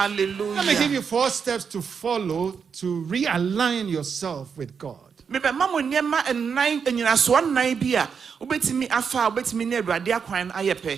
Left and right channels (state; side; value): quieter; left; 6.4 dB